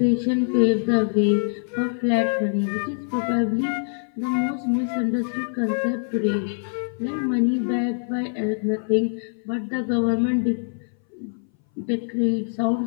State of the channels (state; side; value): silent; right; 60 dB below the other